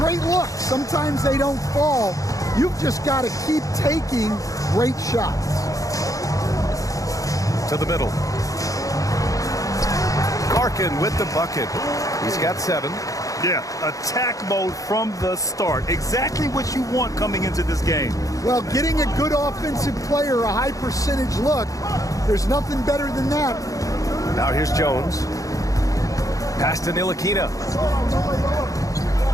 look. Sometimes they don't fall. You've just got to keep taking great shots. To the middle. Larkin with the bucket. He's got 7. Yeah, attack mode from the start. Exactly what you want coming into this game. Well, getting a good offensive player a high percentage look, there's nothing better than that. Now here's Jones. Pass to Ntilikina.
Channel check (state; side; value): late; right; 0.16 ms